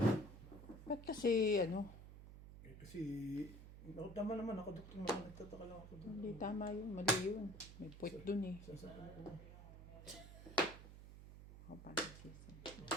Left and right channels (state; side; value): noise; right; hum, 14 dB below the sound